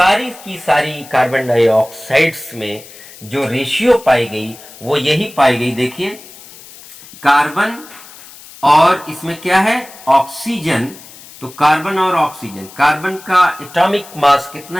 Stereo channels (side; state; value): left; noise; hiss, 19 dB below the sound